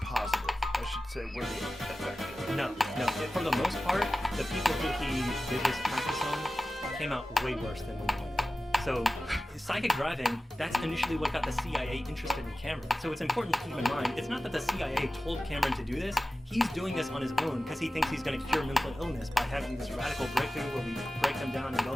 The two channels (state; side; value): normal; both; correlation 0.95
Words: positive. I should say were they effective? No. For the most part, the people who he did his practice on came out way worse than when he went. So psychic driving, that's initially what got the CIA interested in Cameron. So it's important to keep in mind, it's not that the CIA told Cameron to do this, he's doing this on his own because he thinks he's going to cure mental illness by having this radical breakthrough where we break them down and build